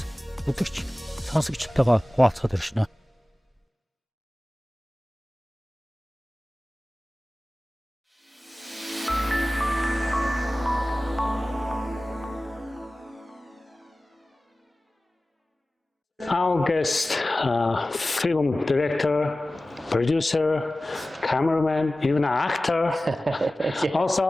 үзэгч, сонсогчтойгоо хуваалцахад иршнэ. Our guest, film director, producer, cameraman, even an actor, yeah.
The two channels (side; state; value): both; normal; correlation 0.97